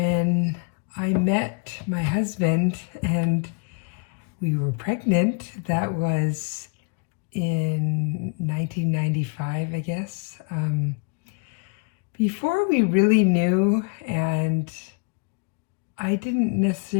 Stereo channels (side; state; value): right; quieter; 35.1 dB